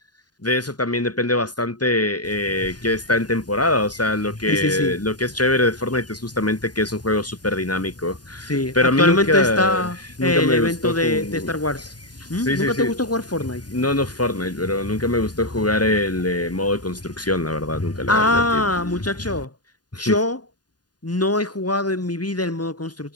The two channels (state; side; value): late; right; 0.69 ms